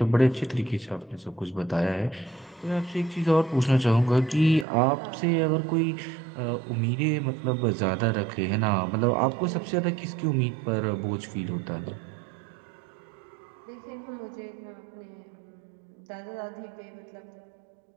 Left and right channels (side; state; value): left; drops out; at 4.7 s